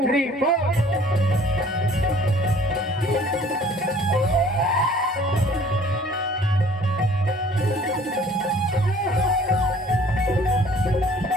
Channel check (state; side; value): normal; both; correlation 0.53